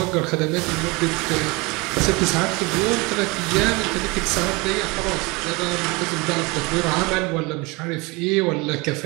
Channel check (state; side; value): quieter; left; 26.0 dB